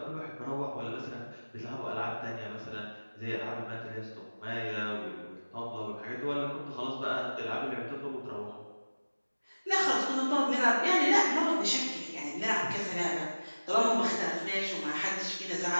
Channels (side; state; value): both; inverted; correlation -1.00